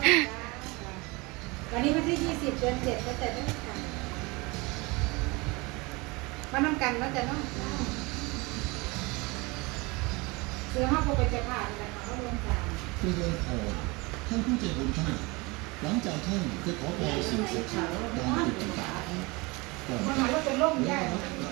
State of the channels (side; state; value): left; quieter; 25.3 dB